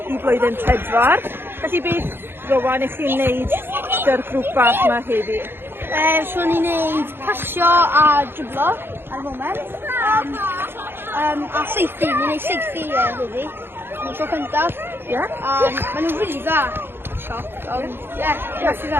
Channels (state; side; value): late; left; 0.11 ms